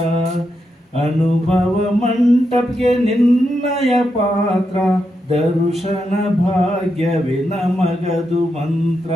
ಅನುಭವ ಮಂಟಪಕ್ಕೆ ನಿನ್ನಯ ಪಾತ್ರ, ದರ್ಶನ ಭಾಗ್ಯವೇ ನಮಗದು ಮಂತ್ರ.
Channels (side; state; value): both; normal; correlation 0.84